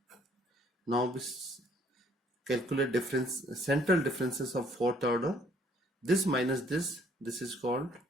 Now we calculate central differences of fourth order. This minus this is called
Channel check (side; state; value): both; normal; correlation 0.62